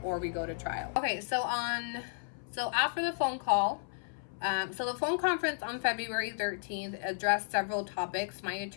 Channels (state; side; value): silent; right; 56 dB below the other